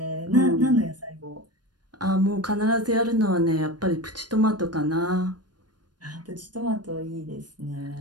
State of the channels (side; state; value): left; late; 0.70 ms